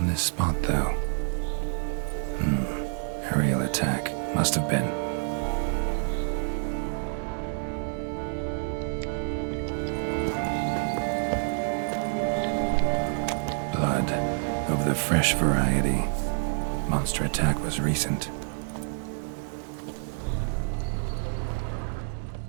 this spot, though. Aerial attack. Must have been. Blood. Of the fresh variety. Monster attack was recent.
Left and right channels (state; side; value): silent; left; 59 dB below the other